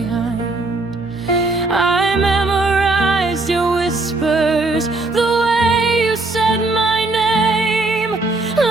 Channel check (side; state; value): left; quieter; 3.2 dB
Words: I memorized your whispers, the way you said my name,